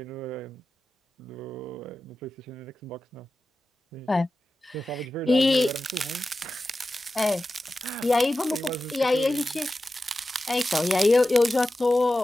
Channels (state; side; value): normal; both; correlation 0.93